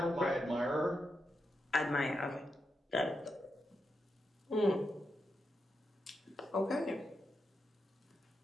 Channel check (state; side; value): normal; both; correlation 0.86